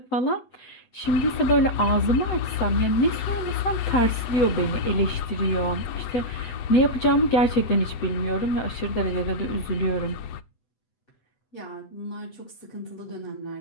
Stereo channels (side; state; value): right; late; 7.9 ms